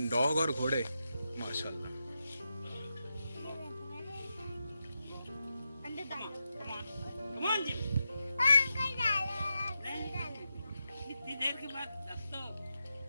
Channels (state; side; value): inverted; both; correlation -0.88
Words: डॉग और घोड़े माशाल्लाह। Come on, Jim. इतनी देर के बाद दस तो